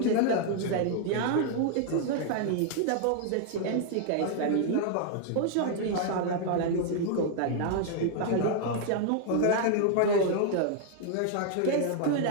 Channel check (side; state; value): both; different; correlation 0.00